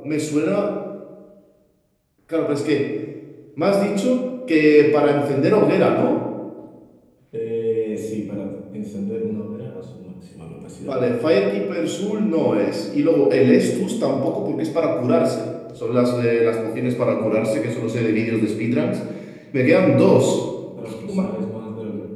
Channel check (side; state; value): both; identical; correlation 1.00